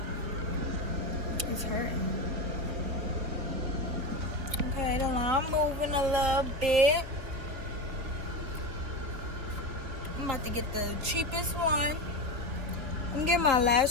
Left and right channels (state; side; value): late; left; 3.9 ms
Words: It's hurting. Okay, then I'm moving a little bit. I'm about to get the cheapest one. I'm getting my